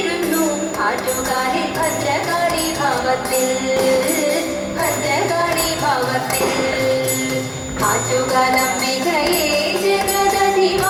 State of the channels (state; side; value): identical; both; correlation 1.00